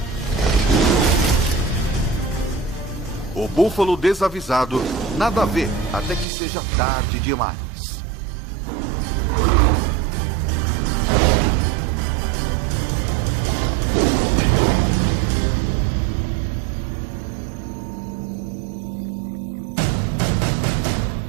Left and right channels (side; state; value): left; drops out; at 6.2 s